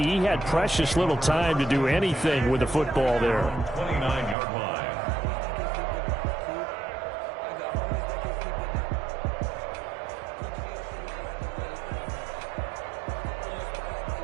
he had precious little time to do anything with the football there. 29-yard line.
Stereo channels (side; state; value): left; drops out; at 4.4 s